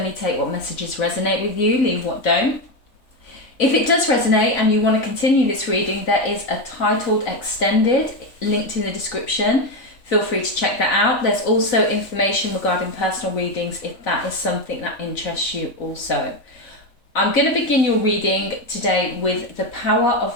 take what messages resonate with you, leave what don't. If it does resonate and you want to continue this reading, there is a titled extended linked in the description. Feel free to check that out. There's also information regarding personal readings if that is something that interests you also. I'm going to begin your reading today with the Power of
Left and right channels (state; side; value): late; right; 3.5 ms